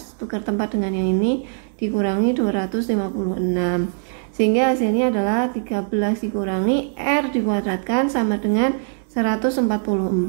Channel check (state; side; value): silent; left; digital silence